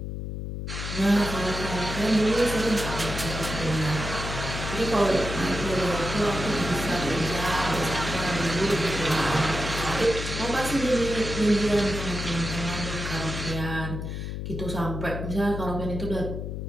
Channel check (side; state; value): left; noise; hum, 5 dB below the sound